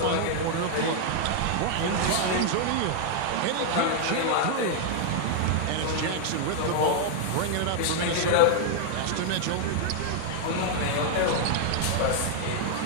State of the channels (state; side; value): different; both; correlation 0.00